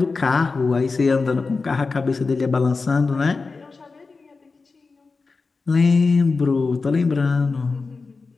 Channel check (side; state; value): right; quieter; 4.2 dB